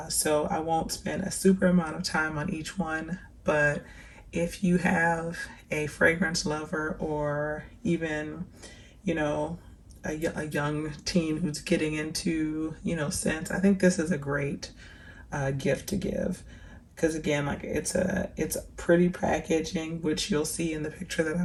So I won't spend a super amount of time on each one, but if you have a fragrance lover or even, you know, a young teen who's getting into, scents, I think this is a great gift to give. Because again, like it's pretty packaging, which you'll see in the picture that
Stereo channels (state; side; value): identical; both; correlation 1.00